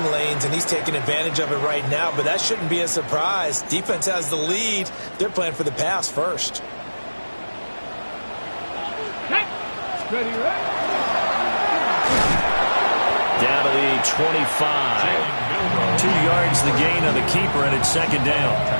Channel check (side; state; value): both; inverted; correlation -1.00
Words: lanes, and he's taking advantage of it right now, but that shouldn't be a surprise. Defense has the lead. They're playing for the pass first. Ready. Down to the 25. 2 yards the gain on the keeper, and it's 2nd down.